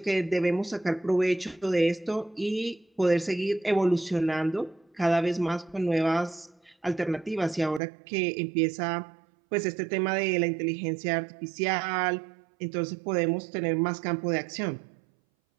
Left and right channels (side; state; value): left; drops out; at 7.8 s